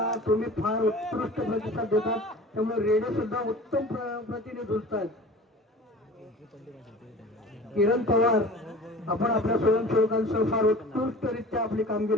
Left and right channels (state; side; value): normal; both; correlation 0.41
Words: तुम्ही फार उत्कृष्ट प्रतिसाद देतात, त्यामुळे रेडे सुद्धा उत्तम प्रतीने झुंजतात. किरण पवार, आपण आपल्या स्वयंसेवकांसह फार उत्कृष्टरित्या आपली